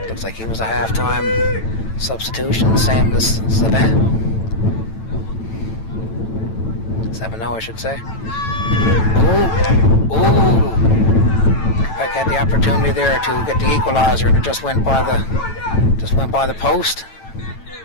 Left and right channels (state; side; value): late; right; 9.0 ms